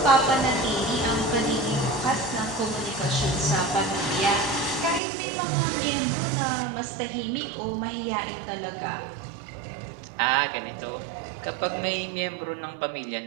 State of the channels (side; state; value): left; drops out; at 5.0 s